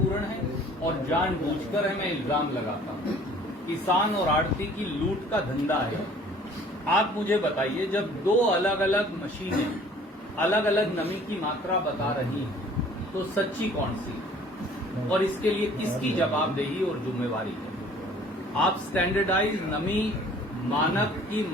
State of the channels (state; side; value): normal; both; correlation 0.53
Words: हैं और जानबूझकर है, मैं इल्जाम लगाता हूं। किसान और आड़ती की लूट का धंधा है। आप मुझे बताइए, जब 2 अलग अलग मशीनें अलग अलग नमी की मात्रा बता रही हैं, तो सच्ची कौन सी? और इसके लिए किसकी जवाबदेही और जिम्मेवारी है? आप स्टैंडर्डाइज नमी मानक की